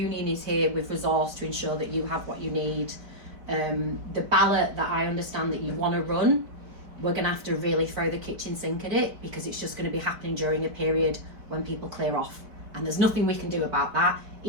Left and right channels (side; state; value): left; late; 4.6 ms